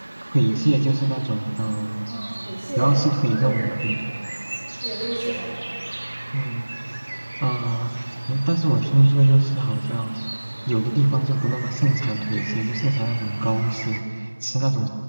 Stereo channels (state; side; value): inverted; both; correlation -1.00